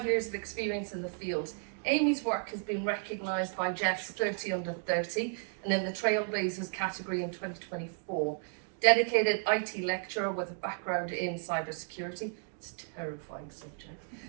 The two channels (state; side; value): silent; left; 56 dB below the other